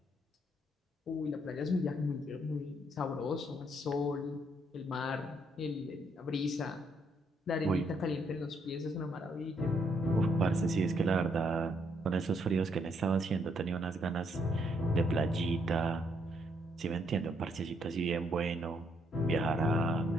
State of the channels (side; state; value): both; normal; correlation 0.73